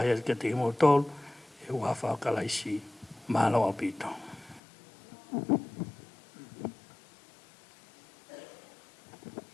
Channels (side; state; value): right; drops out; at 4.6 s